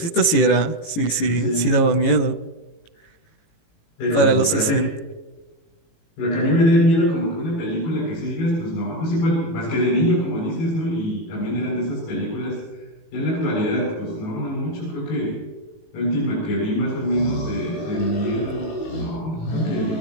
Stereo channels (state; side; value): late; right; 18 ms